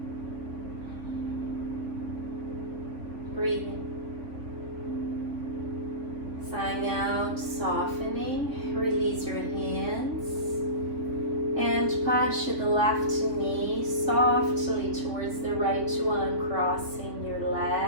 Breathing. Sighing out, softening. Release your hands and push the left knee softly towards the right one, crossing your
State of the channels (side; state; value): left; late; 3.6 ms